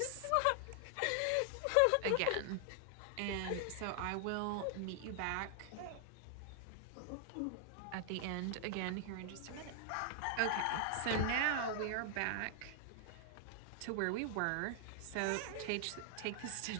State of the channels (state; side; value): different; both; correlation 0.00